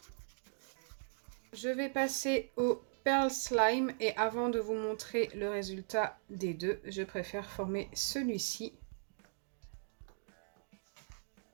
Je vais passer au Pearl Slime et avant de vous montrer le résultat des deux, je préfère former celui-ci.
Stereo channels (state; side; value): silent; left; digital silence